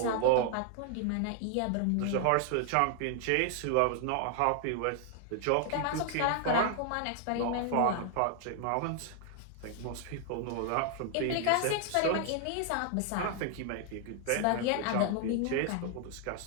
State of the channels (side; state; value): both; different; correlation 0.00